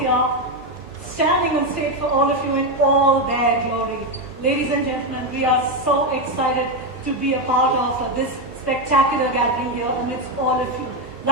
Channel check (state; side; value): normal; both; correlation 0.08